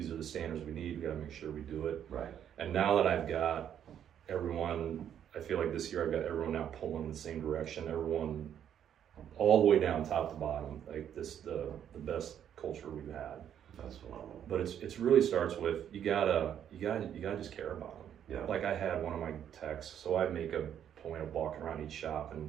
are the standards we need, we gotta make sure we do it. Right. And now that I've got everyone, I feel like this year I've got everyone now pulling in the same direction, everyone all the way down top to bottom, like this, the best culture we've had. That's phenomenal. But it's really starts with, you gotta just care about them. Yeah. Like I had one of my techs, so I make a point of walking around each shop,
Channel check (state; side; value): quieter; left; 9.5 dB